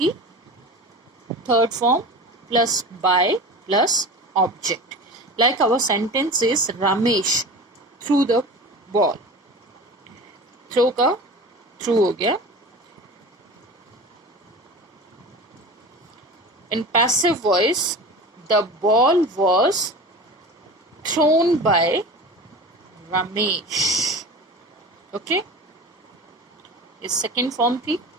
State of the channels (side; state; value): both; normal; correlation 0.34